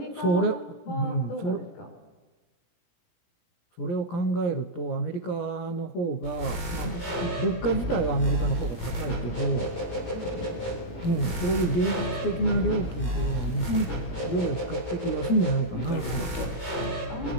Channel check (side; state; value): right; late; 17 ms